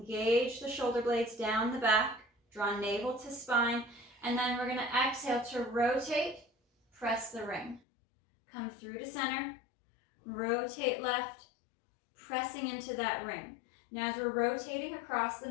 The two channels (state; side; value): drops out; right; at 7.8 s